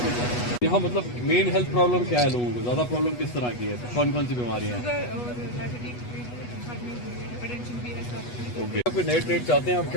यहाँ मतलब मेन हेल्थ प्रॉब्लम क्या है लोगों को? ज्यादा प्रॉब्लम किस तरह की है? कौन कौन सी बीमारियाँ हैं? ओके, आप नए ट्रेड चाहते हैं? आप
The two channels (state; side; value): late; right; 8.2 ms